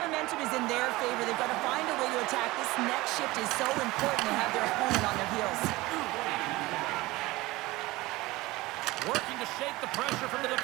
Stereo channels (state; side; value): quieter; left; 20.1 dB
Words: momentum is in their favor. They've got to find a way to attack. This next shift is so important to have their opponent on their heels. Working to shake the pressure from the